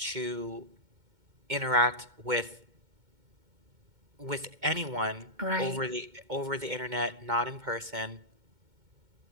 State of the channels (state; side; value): late; left; 2.2 ms